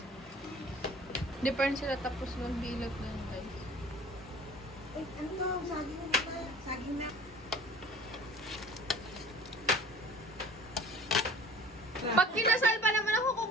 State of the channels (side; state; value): both; normal; correlation 0.47